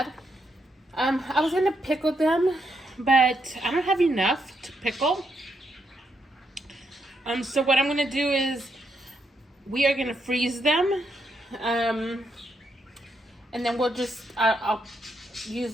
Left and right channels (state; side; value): normal; both; correlation 0.79